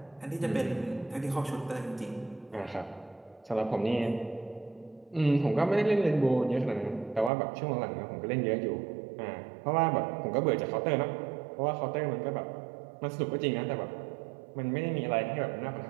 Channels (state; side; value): drops out; left; at 7.3 s